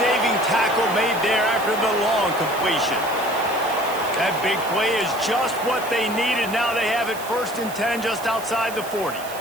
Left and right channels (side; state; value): right; noise; hiss, 14 dB below the sound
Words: tackle made there after the long completion. That big play is just what they needed. Now they have it 1st and 10 just outside the 40.